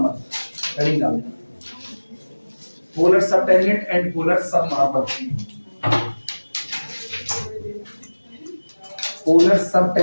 heading डाल देना। Polar sub tangent and polar sub normal. Polar sub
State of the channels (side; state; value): both; inverted; correlation -1.00